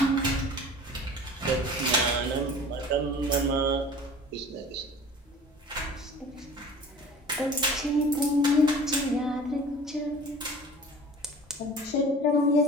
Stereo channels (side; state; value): both; normal; correlation 0.43